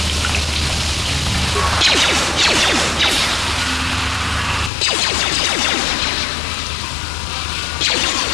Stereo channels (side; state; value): right; drops out; at 4.7 s